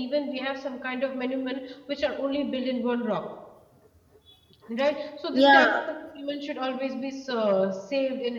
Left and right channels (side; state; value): both; identical; correlation 1.00